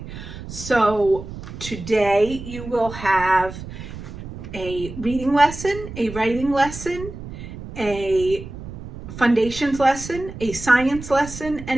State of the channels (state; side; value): noise; right; rumble, 11 dB below the sound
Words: So today you will have a reading lesson, a writing lesson, a foundations lesson, a science lesson,